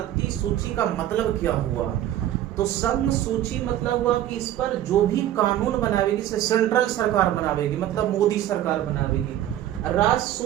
सूची का मतलब क्या हुआ। तो संघ सूची मतलब हुआ कि इस पर जो भी कानून बनावेगी, सेंट्रल सरकार बनावेगी, मतलब मोदी सरकार बनावेगी। राज्य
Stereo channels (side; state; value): left; quieter; 12.4 dB